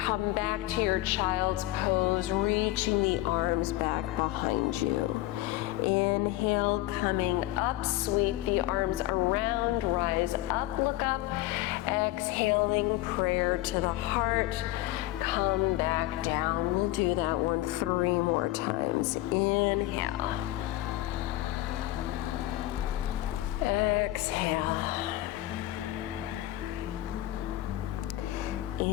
back to your child's pose, reaching the arms back behind you. Inhale, coming up, sweep the arms around, rise up, look up. Exhaling, prayer to the heart. Come back down. We'll do that one 3 more times. Inhale. Exhale.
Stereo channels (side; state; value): right; quieter; 16.2 dB